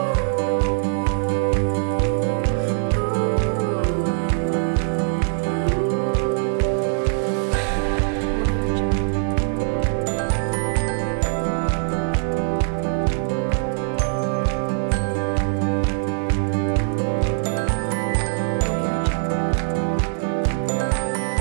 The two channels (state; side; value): silent; left; 58 dB below the other